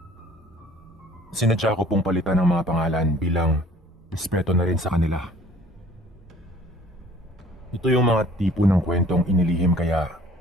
Sinadya ko pong palitan ng mga pangalan bilang respeto na rin sa kanila. Ito yung mga tipo ng kwentong inilihim kaya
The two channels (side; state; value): both; normal; correlation 0.52